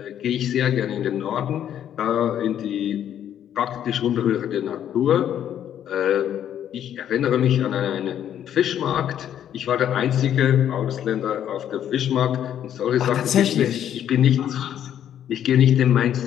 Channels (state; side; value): quieter; right; 10.2 dB